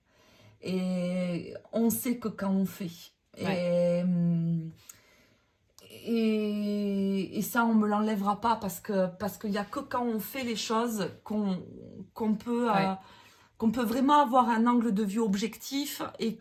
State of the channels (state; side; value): identical; both; correlation 1.00